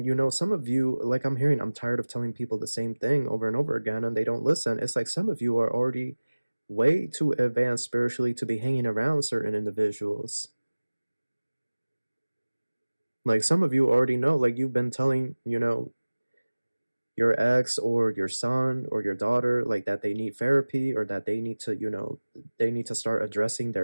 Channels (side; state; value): both; inverted; correlation -1.00